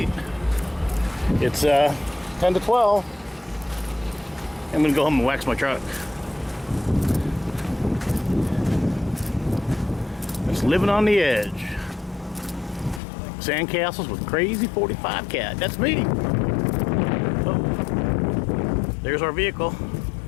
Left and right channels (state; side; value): drops out; right; at 13.0 s